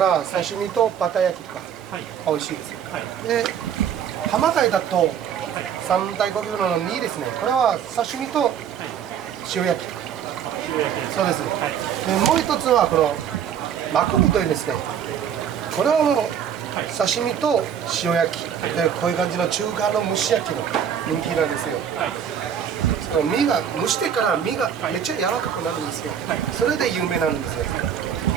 刺身とバタ焼きとか美味しいです。で、浜貝だと3大高級魚の2ですね。これは刺身と塩焼きとか。そうです。でもう一つはこのマクブというんですね。これはもう刺身と塩焼きで、こういう感じの中華の蒸し焼きの人気なんですよ。その身が蒸してから身がめっちゃ柔らかくなるんですよ。それで有名なんですよ。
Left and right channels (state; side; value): quieter; left; 8.5 dB